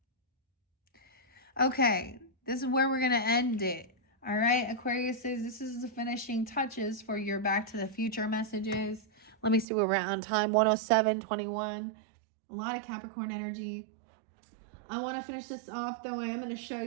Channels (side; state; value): left; drops out; at 9.7 s